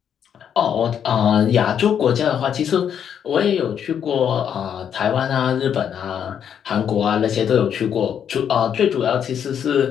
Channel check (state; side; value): quieter; right; 8.5 dB